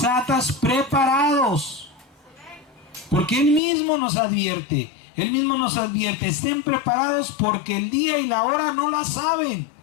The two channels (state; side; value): drops out; right; at 3.6 s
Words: preparados? Porque Él mismo nos advierte, estén preparados porque el día y la hora no la saben.